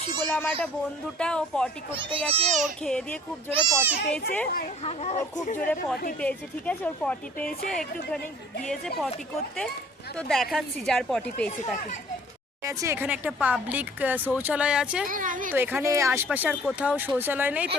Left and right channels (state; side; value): normal; both; correlation 0.52